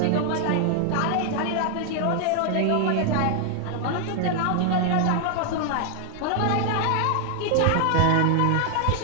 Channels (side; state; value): both; different; correlation 0.00